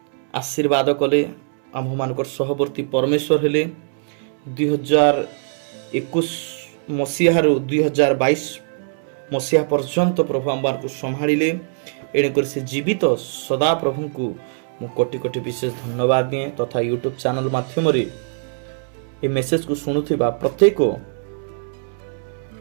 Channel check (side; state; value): left; silent; 65 dB below the other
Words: कले आम मान सहवर्ती परमेश्वर हेले 2021 मसीह 2022 मसीहा पर्यंत प्रभु आम को संभाड़े एणुकर से जीवित सदा प्रभु को मु कोटि कोटि विशेष धन्यवाद दिए तथा यूट्यूब चैनल माध्यम ये मेसेज को शुणुवा प्रत्येक